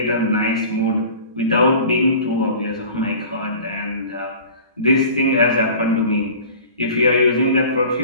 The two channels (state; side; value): inverted; both; correlation -0.41